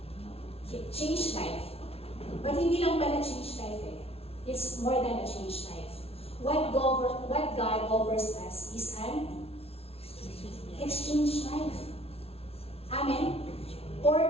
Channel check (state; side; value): late; right; 0.29 ms